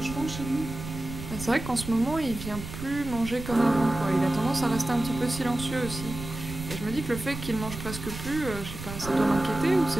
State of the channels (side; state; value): right; noise; rumble, 9 dB below the sound